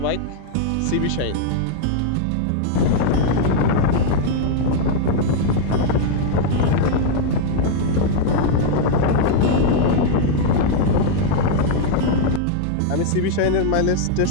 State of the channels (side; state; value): both; different; correlation -0.01